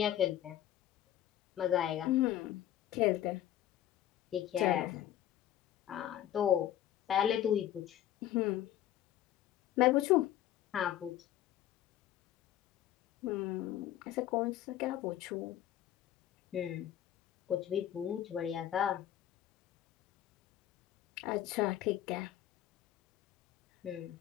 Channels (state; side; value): quieter; right; 12.2 dB